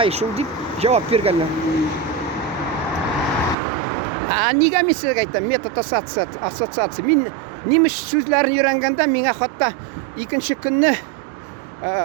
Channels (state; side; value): drops out; left; at 3.6 s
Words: шул дип җавап биргәннәр. Нигә мин сезгә әйтәм, метод ассоциация. Мин немец сүзләрен өйрәнгәндә миңа хатта икенче көнне